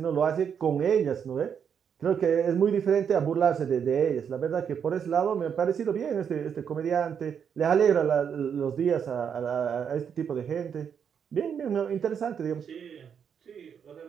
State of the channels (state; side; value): quieter; left; 7.5 dB